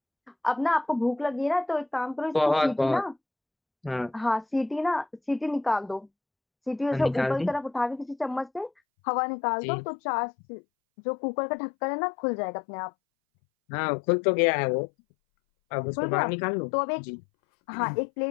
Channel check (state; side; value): drops out; right; at 8.7 s